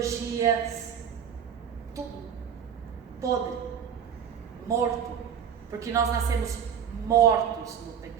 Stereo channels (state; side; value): quieter; left; 8.1 dB